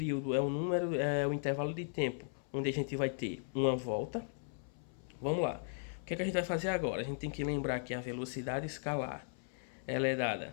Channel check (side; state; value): right; silent; 53 dB below the other